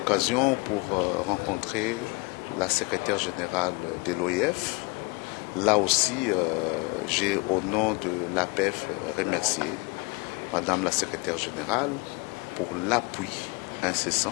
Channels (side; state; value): right; quieter; 28.0 dB